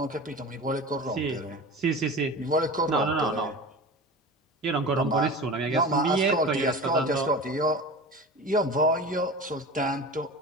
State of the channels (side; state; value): both; normal; correlation 0.32